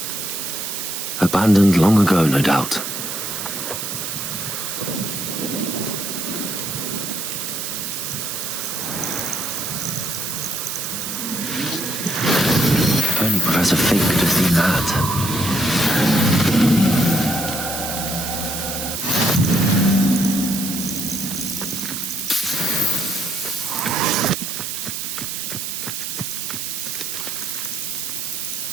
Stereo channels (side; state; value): right; noise; hiss, 4 dB below the sound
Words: Abandoned long ago, no doubt. If only Professor Fig could have seen that.